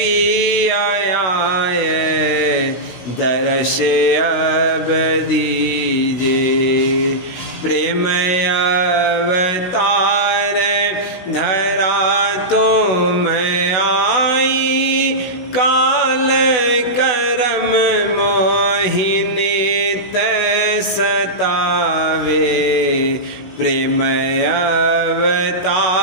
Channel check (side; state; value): right; late; 16 ms